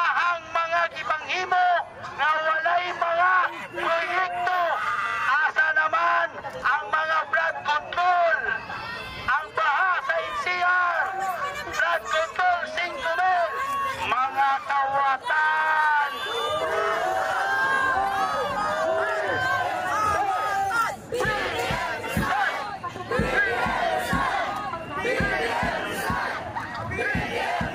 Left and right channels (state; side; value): identical; both; correlation 1.00